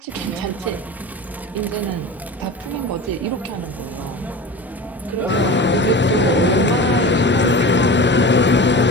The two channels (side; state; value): both; normal; correlation 0.32